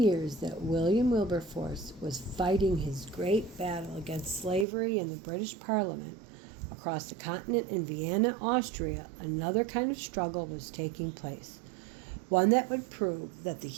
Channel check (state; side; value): drops out; left; at 4.7 s